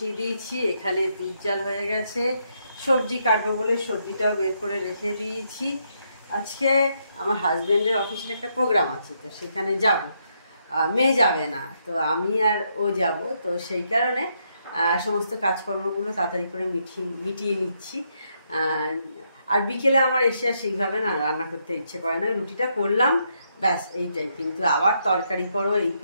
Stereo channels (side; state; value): both; inverted; correlation -0.77